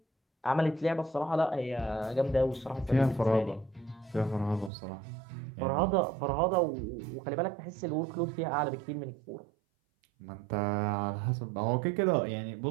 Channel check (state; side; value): drops out; left; at 4.7 s